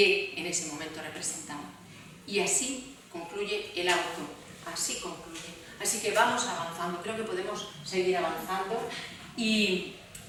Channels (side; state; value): both; identical; correlation 1.00